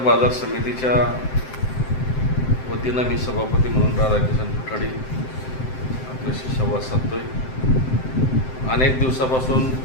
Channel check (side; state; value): right; late; 7.7 ms